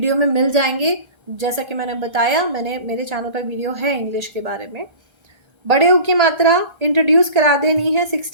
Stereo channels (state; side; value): late; left; 1.8 ms